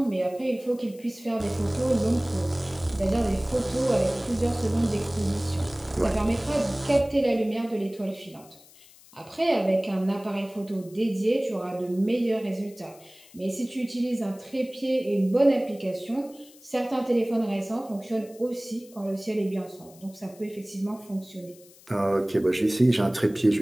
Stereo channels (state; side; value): noise; left; hiss, 24 dB below the sound